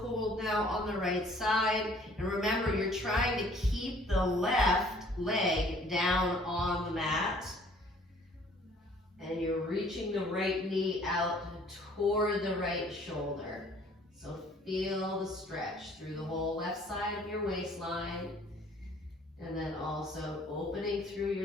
now on the right side. And remember, you're trying to keep the left leg down on the mat. And you're reaching the right knee out toward the right shoulder. So feel the stretch through the whole left side of your waistline. And then also opening through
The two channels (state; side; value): normal; both; correlation 0.56